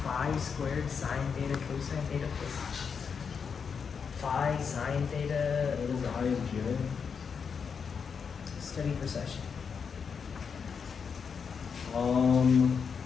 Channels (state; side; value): quieter; right; 6.2 dB